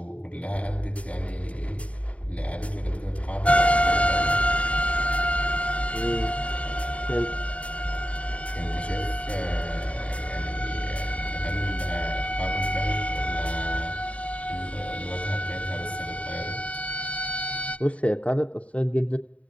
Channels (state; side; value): late; right; 0.065 ms